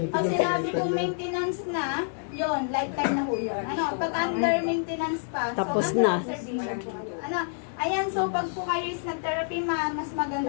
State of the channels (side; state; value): right; silent; 60 dB below the other